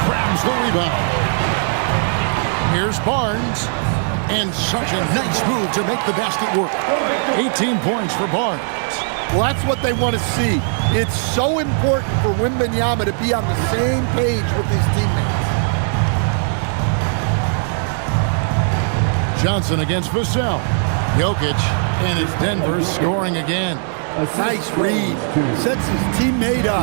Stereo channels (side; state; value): left; silent; 63 dB below the other